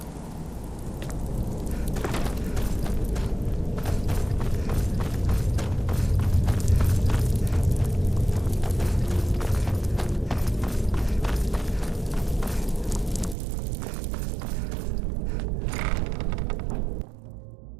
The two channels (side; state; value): left; drops out; at 13.4 s